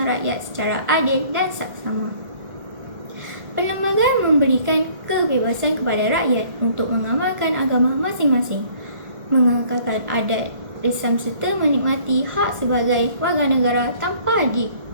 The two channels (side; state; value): left; late; 1.8 ms